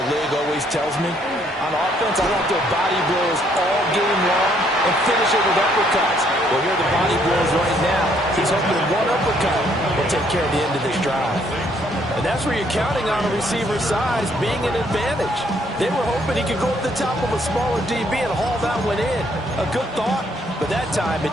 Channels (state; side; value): normal; both; correlation 0.67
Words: league always tells me, on offense, I want their body blows all game long and finish it with uppercuts. Well, here are the body blows right now. He's hoping that one uppercut will take care of the end of this drive. And that's where you're counting on a receiver's size being an advantage. They were hoping he could go up the top of a smaller DB and haul that one in. A good thought, but that time it